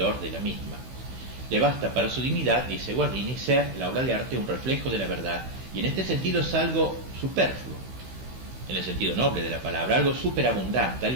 de la misma. Le basta para su dignidad, dice Guardini, ser la obra de arte un reflejo de la verdad, y en este sentido es algo superfluo, en el sentido noble de la palabra, algo superabundante,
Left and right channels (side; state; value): left; late; 16 ms